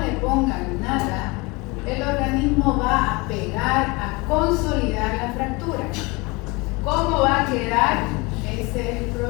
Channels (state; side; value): quieter; right; 25.8 dB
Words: pongan nada, el organismo va a pegar, a consolidar la fractura. ¿Cómo va a quedar? Ese es el